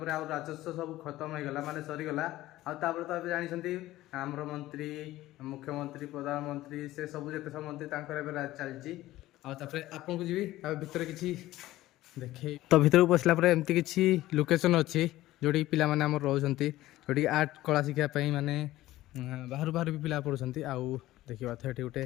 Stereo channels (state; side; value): quieter; right; 16.1 dB